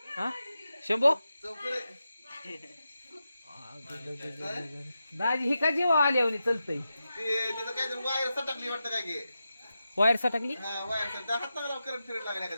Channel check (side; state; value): both; inverted; correlation -0.90